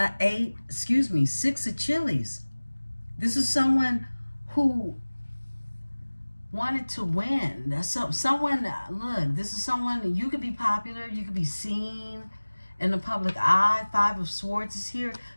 of chilies. This is someone who wanted to win. Someone, look, this is someone, you could be popular, you could be seen in the public eye. 5 of Swords is here.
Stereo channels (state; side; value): inverted; both; correlation -1.00